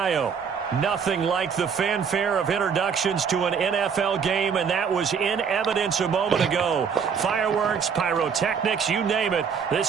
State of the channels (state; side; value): quieter; left; 6.6 dB